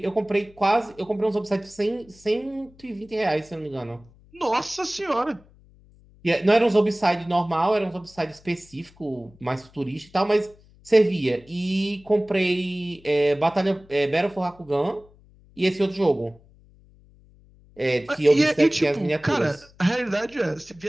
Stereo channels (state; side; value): noise; left; hum, 27 dB below the sound